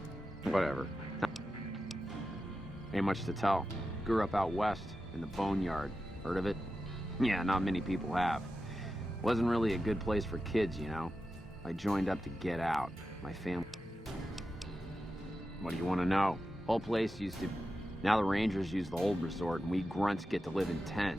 Whatever. Ain't much to tell. Grew up out west, in the Boneyard. Heard of it? Yeah, not many people have. Wasn't really a good place for kids, you know? I joined up to get out. My family... What do you want to know? Whole place used to... Now the Rangers use the old resort, and we grunts get to live in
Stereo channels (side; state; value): both; normal; correlation 0.91